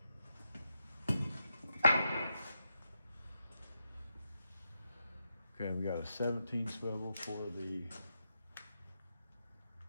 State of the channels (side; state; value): both; inverted; correlation -0.85